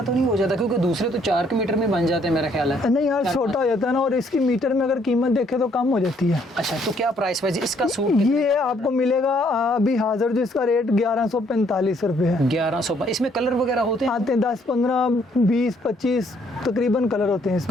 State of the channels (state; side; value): normal; both; correlation 0.67